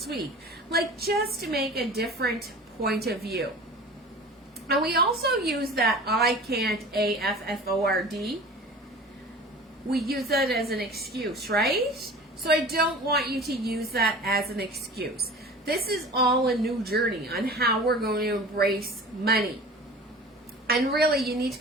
week? Like, just to make a different point of view. And we also use that I can't, A-F-F-O-R-D. We use that as an excuse, right? So I don't want you to use that as an excuse. This is all a new journey on how we're going to embrace money. And really, you need to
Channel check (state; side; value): normal; both; correlation 0.40